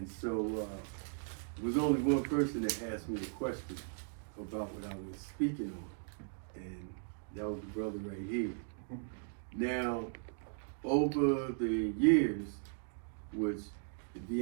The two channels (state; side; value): silent; left; digital silence